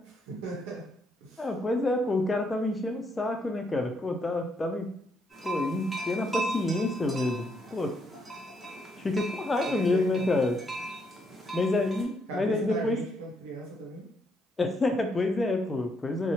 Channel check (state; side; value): normal; both; correlation 0.75